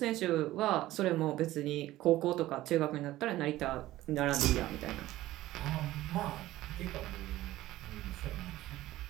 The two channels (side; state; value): left; quieter; 15.9 dB